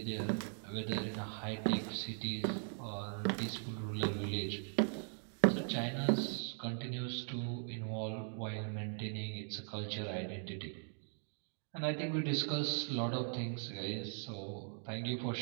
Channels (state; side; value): silent; left; 51 dB below the other